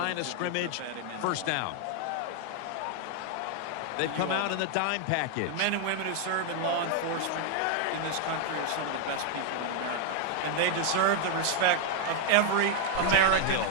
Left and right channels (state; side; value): different; both; correlation 0.00